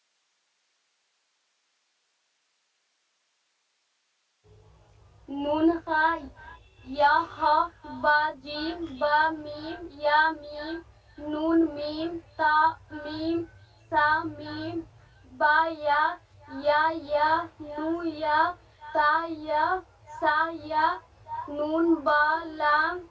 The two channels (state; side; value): identical; both; correlation 1.00